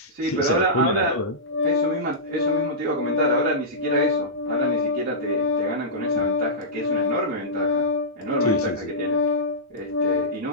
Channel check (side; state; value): both; normal; correlation -0.15